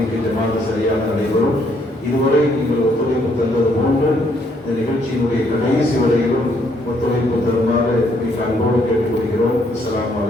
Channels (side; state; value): both; normal; correlation 0.70